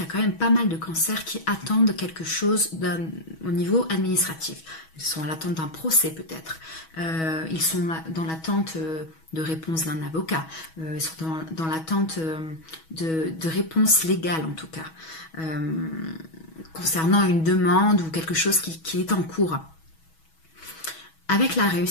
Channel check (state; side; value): late; right; 6.2 ms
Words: y a quand même pas mal de cancers qui attendent quelque chose au niveau administratif. Ils sont à l'attente d'un procès peut-être. Ils sont dans l'attente de réponse d'un avocat. Ils sont dans l'attente de réponses légales en tout cas. Concernant une demande ou quelque chose qui est en cours. Avec la